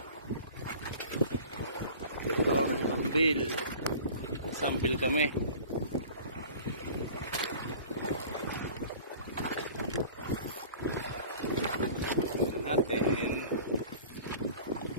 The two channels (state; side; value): inverted; both; correlation -0.43